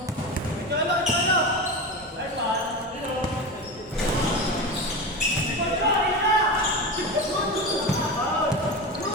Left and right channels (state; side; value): normal; both; correlation 0.23